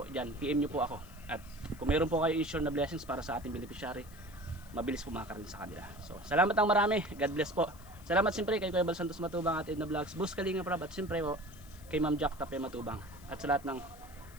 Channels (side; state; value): left; noise; hiss, 23 dB below the sound